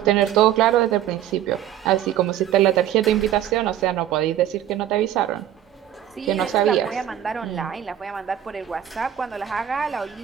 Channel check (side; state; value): left; quieter; 11.1 dB